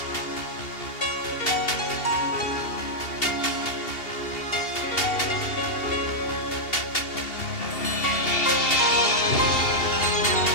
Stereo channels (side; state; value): right; late; 2.8 ms